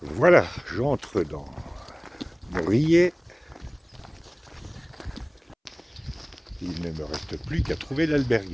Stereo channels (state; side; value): identical; both; correlation 1.00